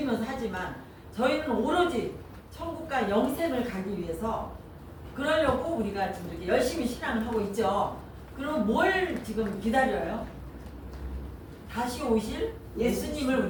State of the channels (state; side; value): identical; both; correlation 1.00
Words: 하지만 저희는 오로지 천국과 영생을 가기 위해서 그러려고 우리가 지금 이렇게 열심히 신앙을 하고 있죠. 그럼 뭘 지금 기다려요? 다시 오실 예수님을